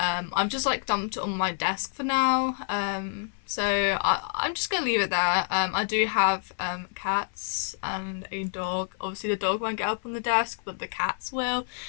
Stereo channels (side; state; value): right; silent; 56 dB below the other